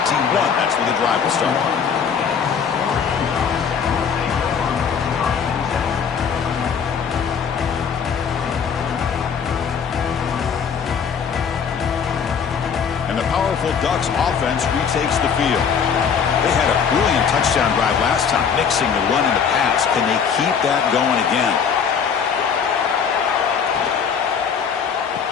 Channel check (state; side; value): quieter; right; 6.8 dB